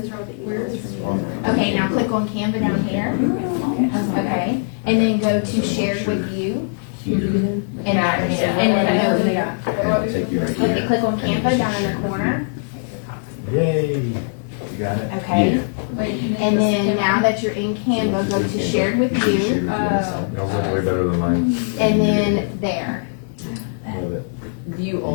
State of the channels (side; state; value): right; silent; digital silence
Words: Okay, now click on Canva down here. Okay, and then go to shared with you. And what do I do? Okay, click on Canva down in the corner. Yay. You got it? Okay. And then now that you're in Canva, go to shared with you. Yours is way better than mine. And then there. Love it. View